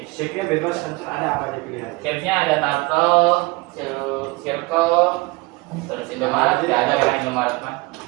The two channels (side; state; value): left; quieter; 24.6 dB